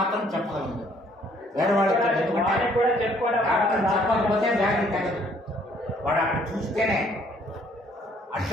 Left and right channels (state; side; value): normal; both; correlation 0.63